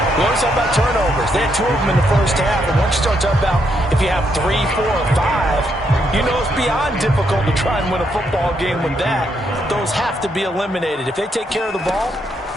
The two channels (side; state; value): both; normal; correlation 0.77